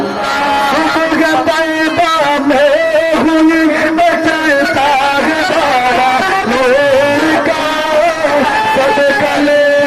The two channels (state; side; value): identical; both; correlation 1.00